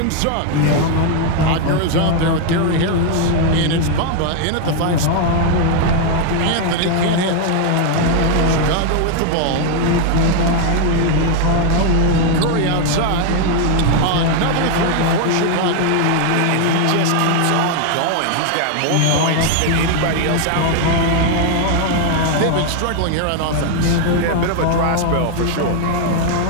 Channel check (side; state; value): both; different; correlation 0.00